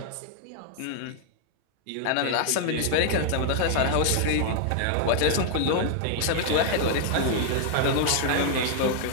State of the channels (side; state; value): both; different; correlation 0.00